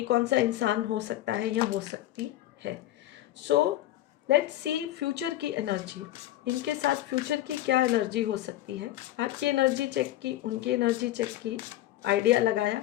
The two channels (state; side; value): quieter; right; 14.4 dB